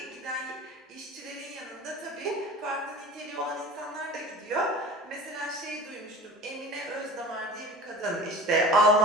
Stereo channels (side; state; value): both; normal; correlation 0.37